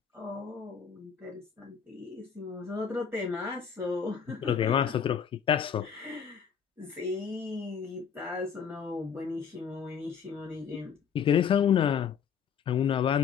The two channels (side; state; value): right; quieter; 7.4 dB